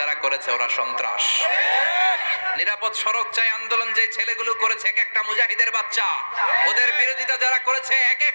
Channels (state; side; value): inverted; both; correlation -1.00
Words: যারা করেছে ওরা সন্ত্রাস। নিরাপদ সড়ক চাই আন্দোলন যে ছেলেগুলো করেছে এক একটা মুজাহিদের বাচ্চা, ওদের বিরোধিতা যারা করেছে এক